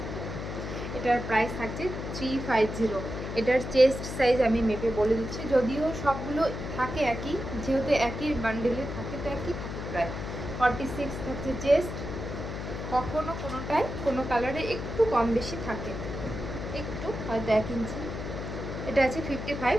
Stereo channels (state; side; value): noise; left; hum, 6 dB below the sound